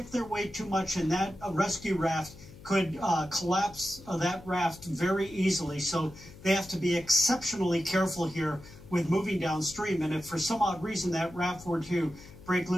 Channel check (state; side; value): noise; left; hum, 19 dB below the sound